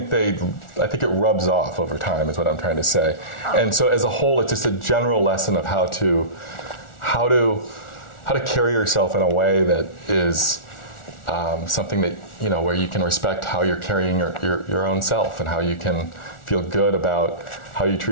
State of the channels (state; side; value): late; right; 1.4 ms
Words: it rubs off over time, is what I'm trying to say. And so as a whole, it's just a general lesson of how to carry yourself in a way that is something that, where you can respect how you're carrying your own self, and how you can feel good about how you